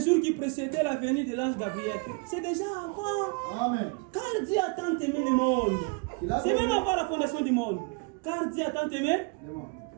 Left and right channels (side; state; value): left; quieter; 29.8 dB